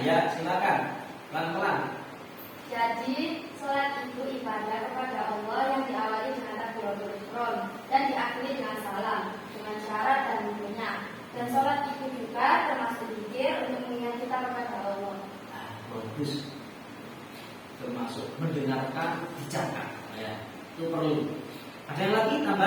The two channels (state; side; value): identical; both; correlation 1.00